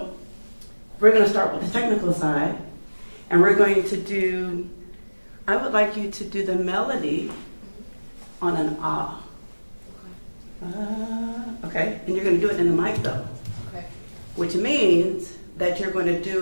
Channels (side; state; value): both; inverted; correlation -1.00